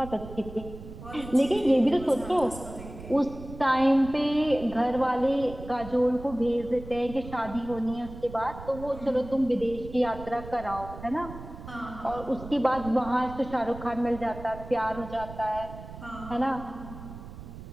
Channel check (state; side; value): noise; right; rumble, 13 dB below the sound